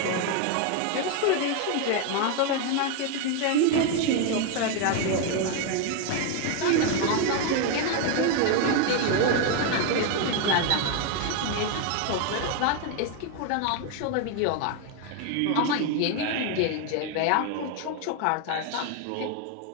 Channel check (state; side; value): different; both; correlation 0.01